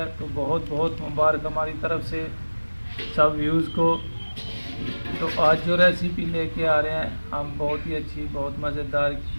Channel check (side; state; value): both; inverted; correlation -1.00